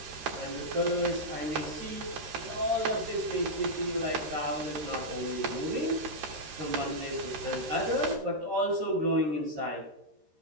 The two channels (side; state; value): left; late; 13 ms